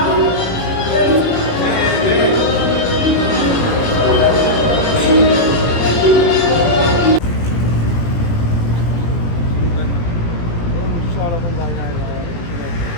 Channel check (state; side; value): late; right; 17 ms